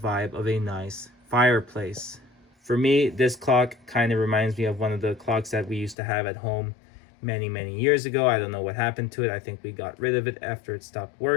of a nice fireplace. For me, this clock kind of reminds me of one of the clocks that we used to have at home many years ago. I don't know what happened to it. I think we got rid of it after it stopped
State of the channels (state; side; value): drops out; right; at 6.0 s